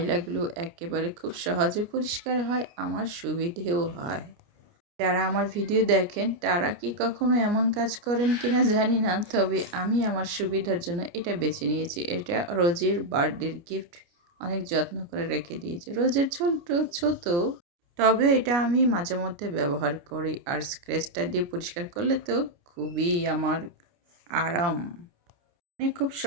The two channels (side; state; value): left; late; 29 ms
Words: একেবারে খুব সহজে পরিষ্কার হয়, আমার সুবিধেও হয়। যারা আমার ভিডিও দেখেন তারা কি কখনো এমন কাজ করেন কিনা জানি না, তবে আমি আমার সুবিধার জন্য এটা বেছে নিয়েছি। এটা রোজের বার্থডের গিফট, অনেক যত্ন করে রেখে দিয়েছি। রোজের ছোট ছোট, তবে এটা আমি মাঝে মধ্যে ব্যবহার করি। আর স্ক্র্যাচটা দিয়ে পরিষ্কার করলে তো খুবই আমার আরাম, মানে খুব